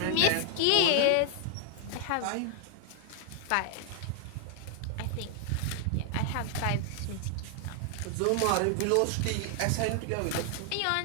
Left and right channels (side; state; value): both; different; correlation 0.00